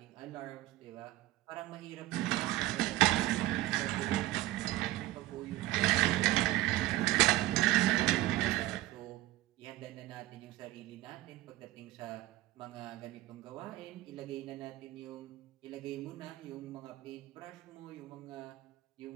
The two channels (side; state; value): left; quieter; 16.5 dB